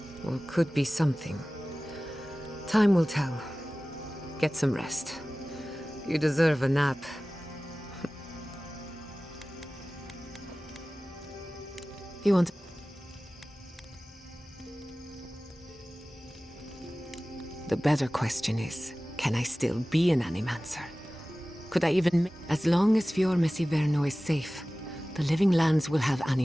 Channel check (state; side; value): normal; both; correlation 0.97